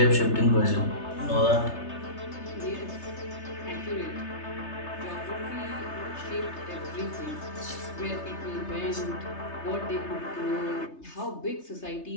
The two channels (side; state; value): right; late; 3.3 ms